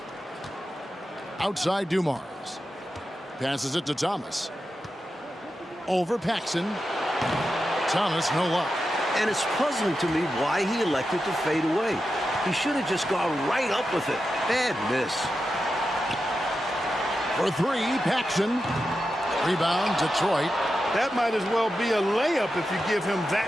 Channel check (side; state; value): both; normal; correlation 0.90